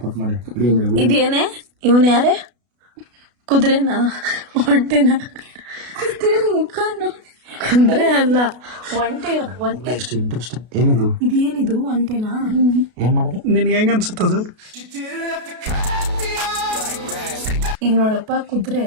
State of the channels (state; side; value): late; left; 33 ms